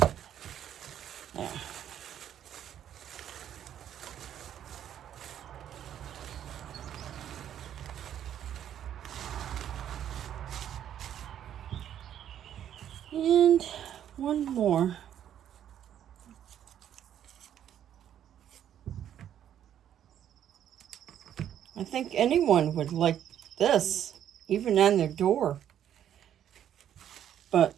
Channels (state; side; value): quieter; left; 10.2 dB